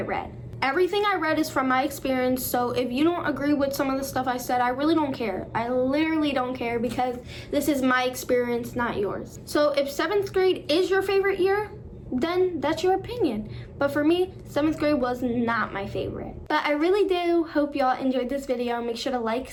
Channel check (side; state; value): both; identical; correlation 1.00